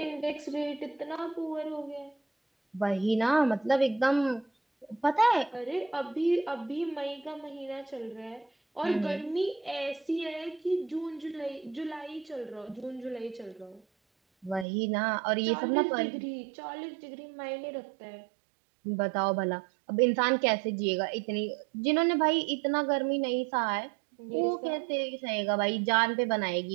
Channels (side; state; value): left; drops out; at 14.7 s